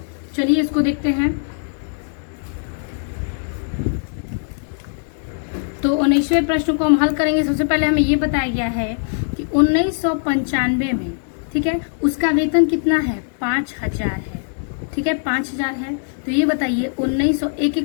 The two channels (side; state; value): right; silent; digital silence